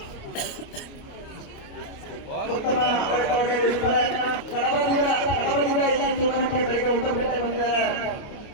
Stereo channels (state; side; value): late; right; 29 ms